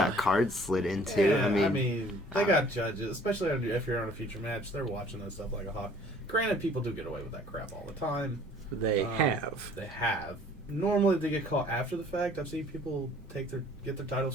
cards slid into. Yeah, I mean, they got judges, especially if you're on a feature match. They're watching that stuff like a hawk. Granted, people do get away with that crap all the time. they have? They have. Normally, they get caught after the fact. I've seen people get their title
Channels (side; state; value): both; normal; correlation 0.55